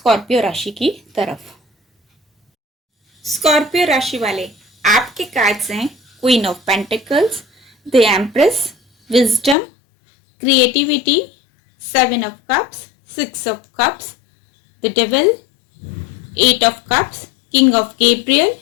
राशि की तरफ। स्कॉर्पियो राशि वाले, आपके कार्ड्स हैं queen of pentacles, the empress, wisdom, creativity, seven of cups, six of cups, the devil, eight of cups, king of Gabriel,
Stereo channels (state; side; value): drops out; right; at 9.6 s